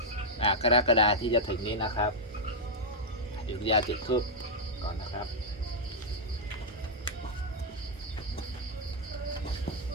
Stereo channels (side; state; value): both; normal; correlation -0.05